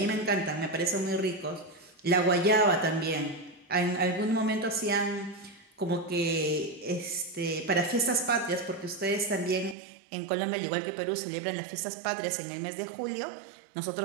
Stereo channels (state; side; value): drops out; left; at 9.8 s